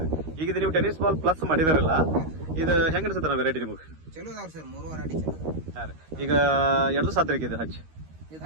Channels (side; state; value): left; late; 13 ms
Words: ಈಗ ಇದು ನೀವು ಟೆನಿಸ್ ಬಾಲ್ ಪ್ಲಸ್ ಮಾಡಿದಾರಲ್ಲ, ಇದು ಹೆಂಗ ಅನ್ಸುತ್ತೆ ವೆರೈಟಿ ನಿಮಗೆ? ಚಲೋ ಅದಾವ್ರಿ ಸರ್. 3 ವೆರೈಟಿ ಚಲೋ ಅದಾವ. ಹಾಂ ರೀ. ಈಗ ಎರಡು ಸಾತ್ರಿಕೆ ಇದೆ ಹಚ್ಚಿ? ಇದು